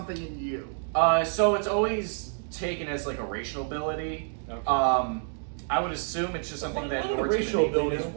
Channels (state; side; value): silent; left; 59 dB below the other